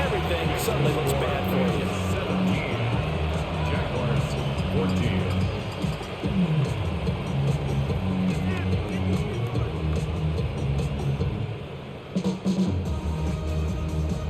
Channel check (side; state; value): both; identical; correlation 1.00